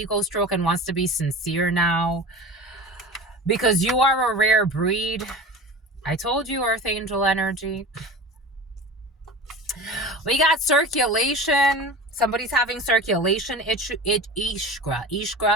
stroke and wants to be sincere now. Because you are a rare breed. I told you, Earth Angel energy. We got circulation. Somebody's having circulation ishkra.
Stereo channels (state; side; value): normal; both; correlation 0.34